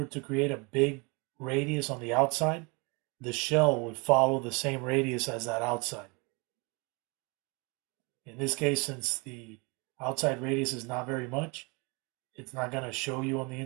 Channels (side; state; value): left; quieter; 29.7 dB